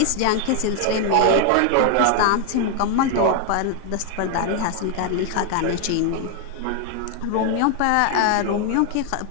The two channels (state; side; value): different; both; correlation 0.00